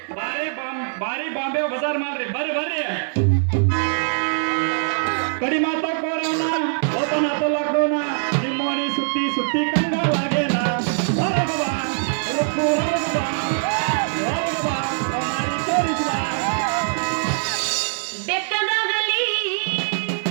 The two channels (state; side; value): silent; left; digital silence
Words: ಬಾರಿ ಬಾಂಬೆ ಬಜಾರ್ ಮಾಡ್ರಿ. ಬರ್ರಿ ಕಡಿ ಮಾತಾಕೋರವನ ಓಪನ್ ಆತ ಲಾಕ್ಡೌನ. ನಿಮ್ಮೋನಿ ಸುತ್ತಿ ಸುತ್ತಿ ಕಂಗಾಲಾಗೇನ.